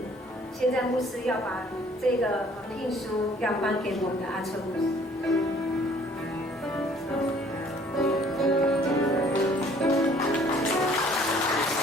现在牧师要把这个聘书要颁给我们的阿春牧师。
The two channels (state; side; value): normal; both; correlation 0.57